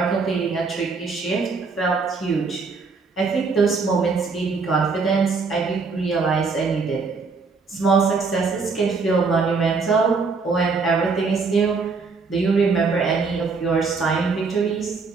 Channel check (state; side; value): quieter; left; 4.5 dB